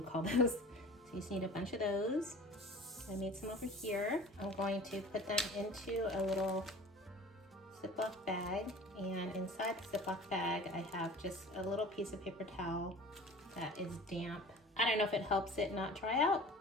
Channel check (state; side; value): normal; both; correlation 0.42